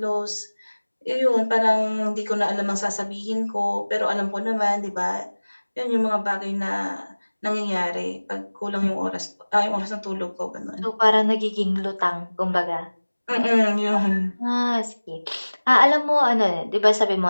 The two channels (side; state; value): both; inverted; correlation -1.00